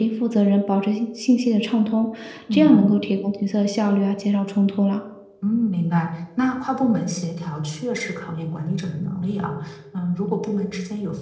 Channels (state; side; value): identical; both; correlation 1.00